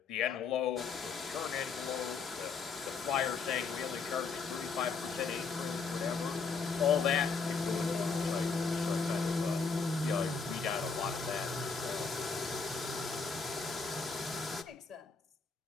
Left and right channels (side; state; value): right; quieter; 4.9 dB